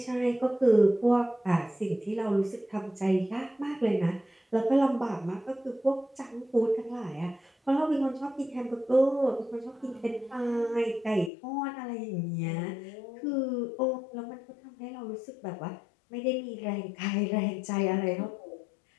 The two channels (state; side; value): drops out; right; at 11.3 s